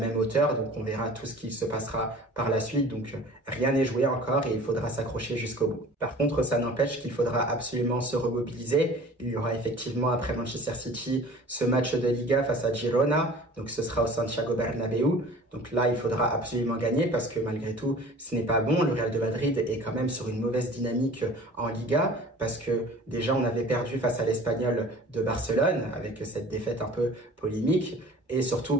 hauteur. Donc on verra tout ce qui se passera par la suite. Donc rien n'est joué encore et il faudra s'accrocher jusqu'au bout. Par contre, ça n'empêche qu'il faudra absolument se remobiliser. Il y aura effectivement après Manchester City ce match de Liga face à Girona. Donc ce sera au Santiago Bernabéu. Donc là, il faudra absolument gagner parce que malgré tout, ce n'est pas bon. Le Real de Madrid est quand même sur une mauvaise dynamique en Liga parce que déjà on avait perdu face à l'Espagnol de Barcelone avec cette défaite un peu polémique. Et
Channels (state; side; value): normal; both; correlation 0.44